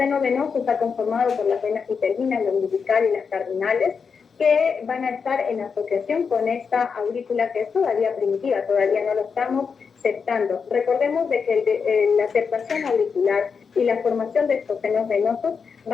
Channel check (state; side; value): quieter; right; 5.8 dB